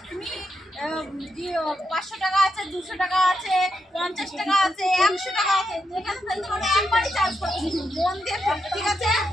তুমি 500 টাকা আছে, 200 টাকা আছে, 50 টাকা আছে, 100 টাকা আছে, যেখানে ফেলতে পারো একবারই চান্স পাবে। মন দিয়ে ফেলবে, ঠিক আছে?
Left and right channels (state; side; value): normal; both; correlation 0.83